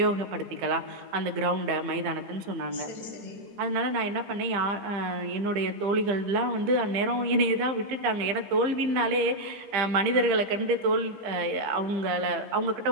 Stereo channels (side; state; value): left; late; 15 ms